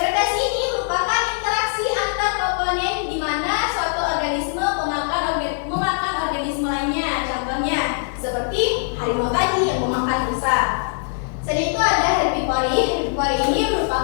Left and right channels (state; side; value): silent; right; digital silence